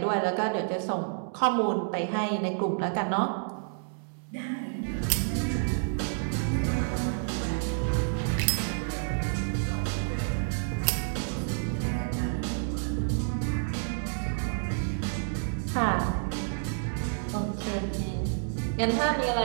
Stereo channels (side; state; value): left; silent; 58 dB below the other